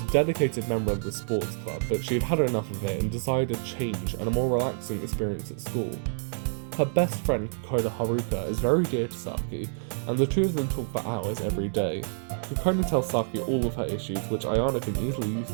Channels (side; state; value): left; silent; 60 dB below the other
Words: dedicated member of the sports club, but she had had enough of it and decided a change and a more relaxing experience at school. Her best friend, Kokona Haruto, is very dear to Saki, and the two of them talk for hours every day. Kokona tells Saki all of her issues, which Ayano can easily use